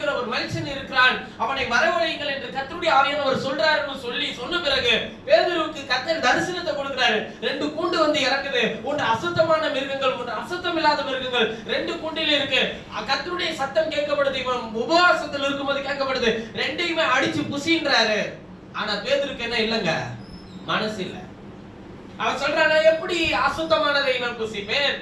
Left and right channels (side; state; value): both; identical; correlation 1.00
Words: ஒரு மனுஷன் இருக்கிறான், அவனை வரவழையுங்கள் என்று கர்த்தருடைய ஆவியானவர் சொல்றாருன்னு சொன்ன பிறகு பேதுருவுக்கு கர்த்தர் தரிசனத்தை கொடுக்கிறாரு. 2 கூண்டு வந்து இறங்குது. ஒன்று அசுத்தமான மிருகங்கள், ஒன்று அசுத்தம் இல்லாத மிருகங்கள். 2 கூண்டில இருக்கு. கர்த்தருடைய சத்தம் கேட்கப்படுது. இவன் உபவாசத்தில் இருக்கும்போது கேட்கப்படுது. 2யுமே அடிச்சு புசின்றாரு. ஆனா பேதுருக்கு என்ன இல்லங்க, மனசு இல்ல. அவன் சொல்றானா, எப்படி அசுத்தமானதை நான் புசிப்பேன்?